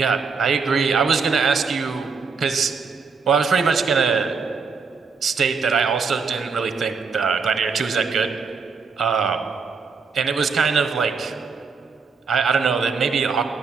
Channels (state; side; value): quieter; left; 5.1 dB